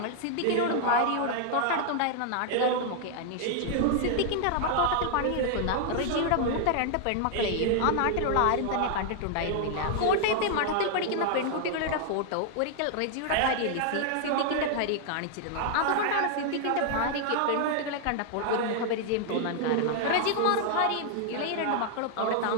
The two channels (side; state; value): both; different; correlation 0.00